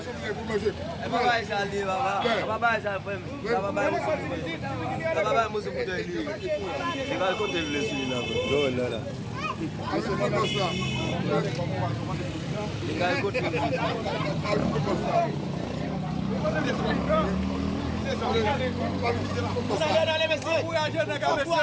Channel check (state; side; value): identical; both; correlation 1.00